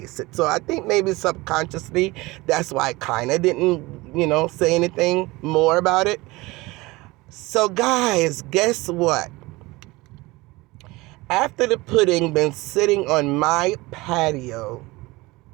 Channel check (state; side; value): quieter; left; 21.7 dB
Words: it. So I think maybe subconsciously that's why I kind of didn't, say anything more about it. So guys, guess what? After the pudding been sitting on my patio